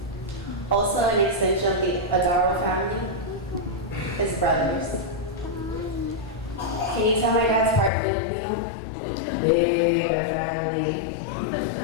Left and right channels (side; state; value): right; drops out; at 7.9 s